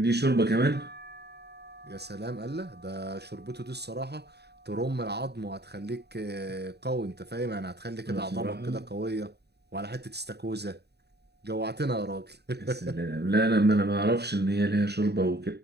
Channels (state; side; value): late; left; 0.48 ms